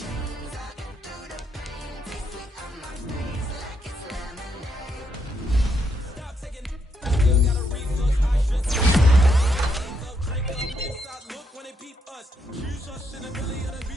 I can do the pain. Taste sweet on my face like it's lemonade. Stop taking. Still got a reflux. I should drink up inside. Look when they peep us. Choose us in the belly of the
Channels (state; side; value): normal; both; correlation 0.77